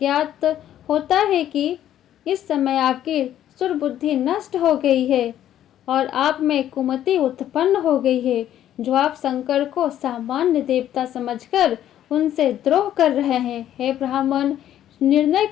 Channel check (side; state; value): right; quieter; 11.5 dB